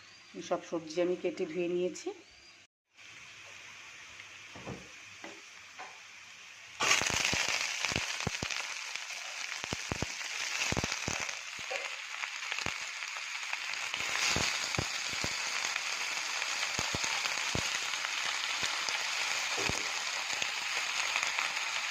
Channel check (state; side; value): identical; both; correlation 1.00